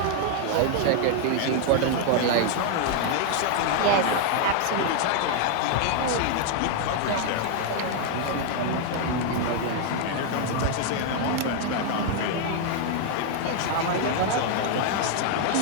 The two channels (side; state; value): both; different; correlation 0.00